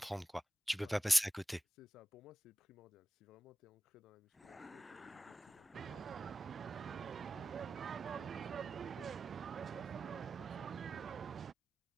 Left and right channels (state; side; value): normal; both; correlation 0.94